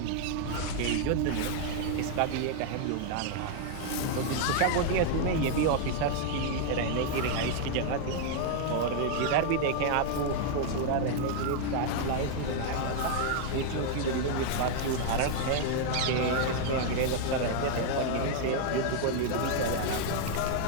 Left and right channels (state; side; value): different; both; correlation 0.00